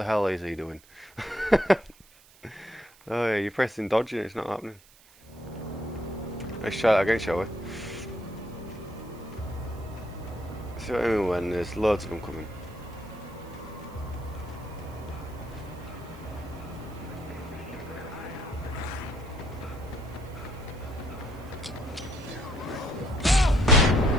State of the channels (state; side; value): noise; right; hiss, 26 dB below the sound